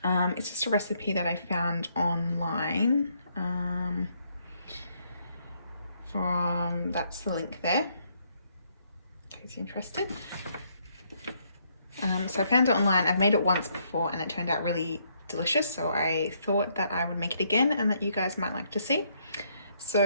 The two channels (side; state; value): both; inverted; correlation -0.72